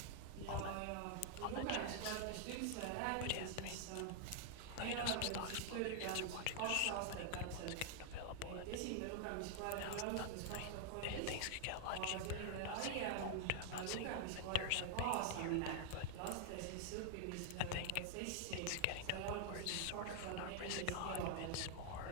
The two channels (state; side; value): different; both; correlation 0.00